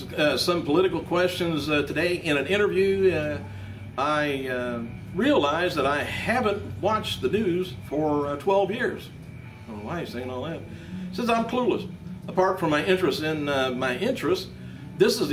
some political questions today in an interview. I realized that I haven't watched the news for 12 years. I don't know why he's saying all that. Says I'm clueless. Apart from my interest in my interests, this is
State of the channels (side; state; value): both; identical; correlation 1.00